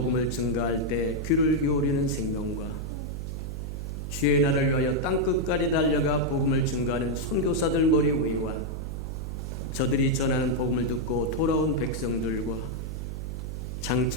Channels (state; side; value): noise; right; hum, 5 dB below the sound